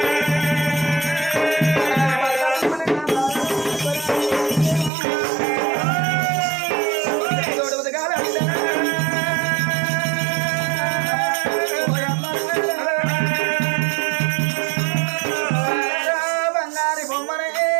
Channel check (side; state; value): left; drops out; at 4.9 s